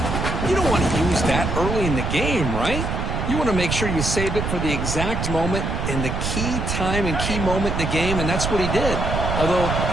you don't want to use that early in the game, right? You want to make sure you save it for the exact moment and the key time and key moment in the game, and that's what he did. Although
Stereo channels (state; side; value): noise; right; rumble, 2 dB below the sound